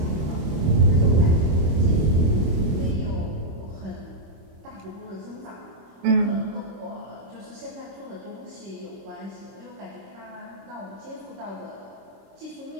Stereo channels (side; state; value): left; late; 26 ms